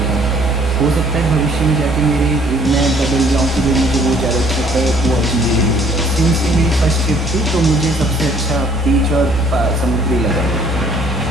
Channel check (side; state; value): both; normal; correlation 0.59